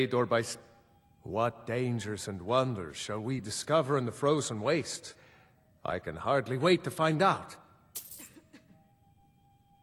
or by... What dangers and wonders shall we discover in the frozen waste? I can hardly wait to find out.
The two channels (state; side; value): identical; both; correlation 1.00